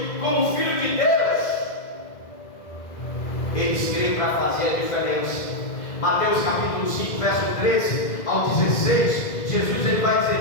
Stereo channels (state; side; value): late; right; 2.0 ms